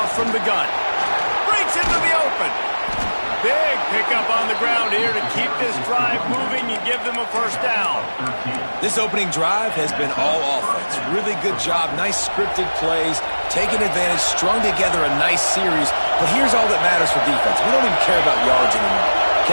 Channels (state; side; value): inverted; both; correlation -1.00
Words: from the gun. Breaks into the open. Big pickup on the ground here to keep this drive moving and give them a first down. This opening drive has been all offense. Really good job. Nice scripted plays. Taking advantage. Strung together a nice series. But here's all that matters for defense. We don't even care about yards anymore.